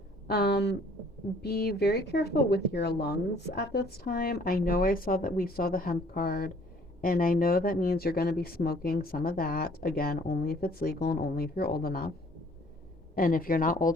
um, be very careful with your lungs at this time. I know I saw that we saw the hemp card, and I know that means you're going to be smoking some of that. Again, only if it's legal and only if you're old enough. And if you're not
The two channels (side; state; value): both; normal; correlation 0.57